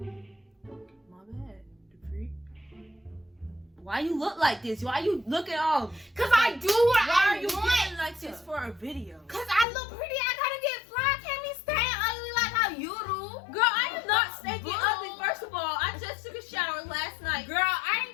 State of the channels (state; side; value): drops out; right; at 9.7 s